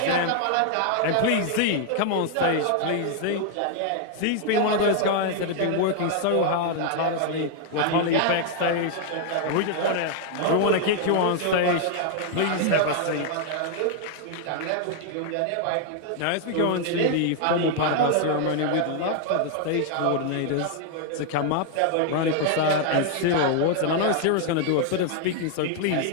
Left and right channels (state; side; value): different; both; correlation 0.00